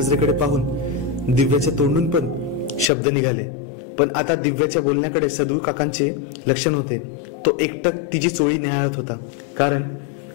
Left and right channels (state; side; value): drops out; right; at 2.9 s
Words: पाहून दिव्याच्या तोंडून पण शब्द निघाले, पण आता दिव्याच्या बोलण्याकडे सदू काकांचे लक्ष नव्हते. तो एकटक तिची चोळी निहाळत होता, कारण